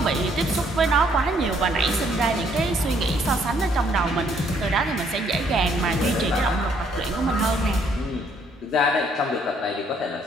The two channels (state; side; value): normal; both; correlation 0.67